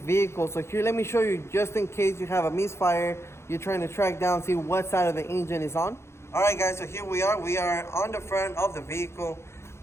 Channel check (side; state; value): right; late; 0.13 ms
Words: So here, let me show you, just in case you have a misfire, you're trying to track down, see what side of the engine is on. Alright guys, so here we are on the front of the vehicle.